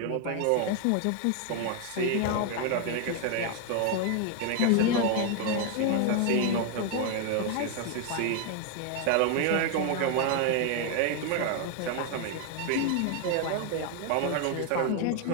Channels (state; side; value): different; both; correlation 0.00